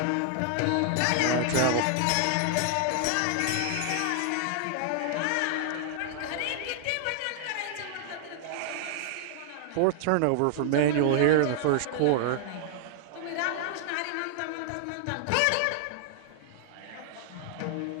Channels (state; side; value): different; both; correlation 0.00